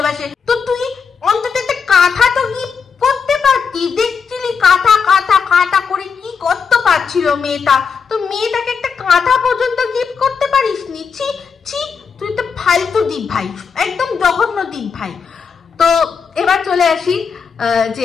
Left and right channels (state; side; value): quieter; right; 5.9 dB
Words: তো তুই অন্তত একটা কাঁথা তো গিফট করতে পারতি, দেখছিলি কাঁথা করে কি করতে পারছিল মেয়েটা, তো মেয়েটাকে একটা কাঁথা পর্যন্ত গিফট করতে পারিস নি। ছি, তুই তো ফালতু দীপ ভাই, একদম জঘন্য দীপ ভাই। তো এবার চলে আসি যে